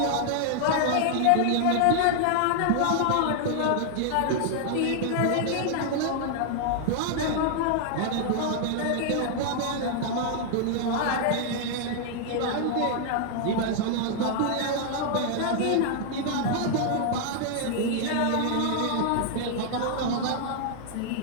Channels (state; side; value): different; both; correlation 0.00